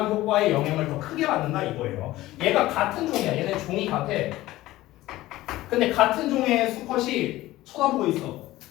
효과의 영향을 더 크게 받는다 이거예요. 얘가 같은 종이야. 얘네 종이 같아. 근데 같은 종의 수컷이 쳐다보고 있어.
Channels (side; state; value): right; quieter; 16.7 dB